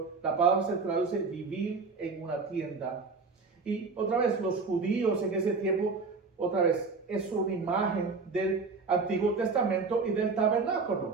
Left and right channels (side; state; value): left; quieter; 4.4 dB